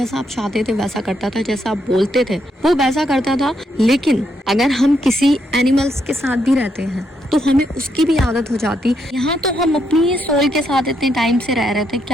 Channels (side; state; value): both; normal; correlation 0.78